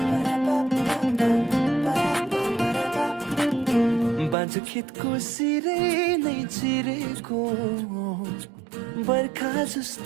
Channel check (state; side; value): drops out; left; at 4.4 s